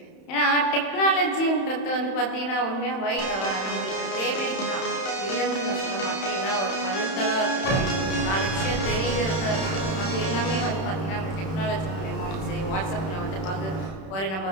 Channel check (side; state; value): right; late; 31 ms